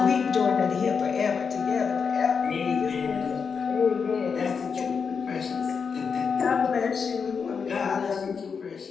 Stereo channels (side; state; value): right; quieter; 5.9 dB